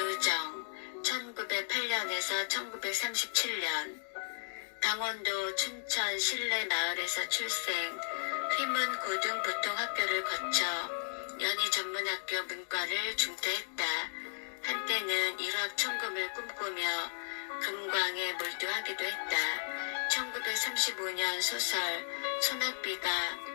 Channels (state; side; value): silent; right; digital silence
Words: 1908년에서 1937년, 강원도 춘천 신례마을에서 출생, 휘문고등보통학교를 거쳐 연희전문학교 문과를 중퇴했다. 한때는 일확천금을 꿈꾸며 금광에 몰두하기도 했다. 1935년 소설 소낙비가